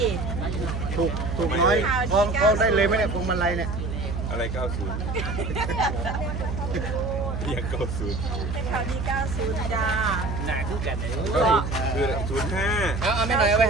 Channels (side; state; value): right; noise; hum, 4 dB below the sound